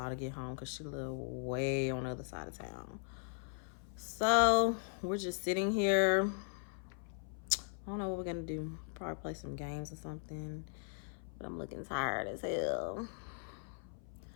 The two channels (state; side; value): silent; right; 52 dB below the other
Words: to get home because she lives way on the other side of town. So, we're just sitting here. I don't know what we're going to do. Probably play some games or something. But I'm looking tired as hell.